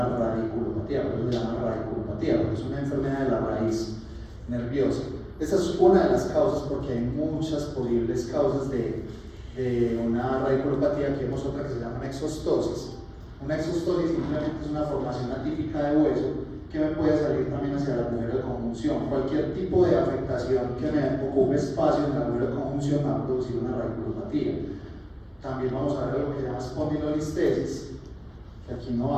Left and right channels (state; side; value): identical; both; correlation 1.00